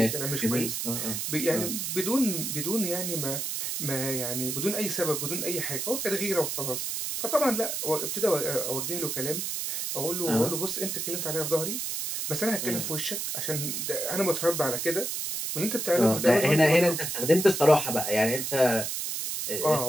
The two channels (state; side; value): noise; right; hiss, 3 dB below the sound